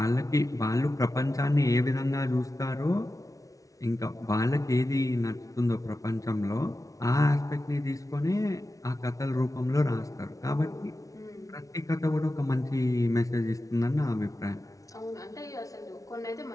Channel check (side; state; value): right; late; 0.17 ms